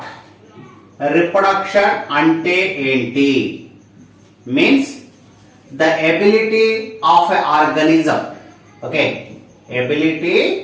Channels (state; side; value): identical; both; correlation 1.00